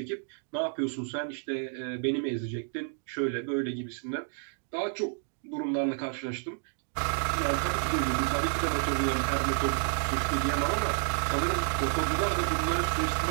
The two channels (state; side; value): silent; left; 58 dB below the other